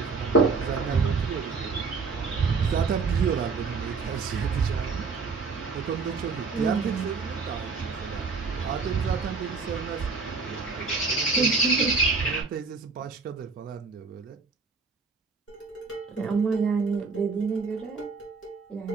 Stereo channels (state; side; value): quieter; left; 4.5 dB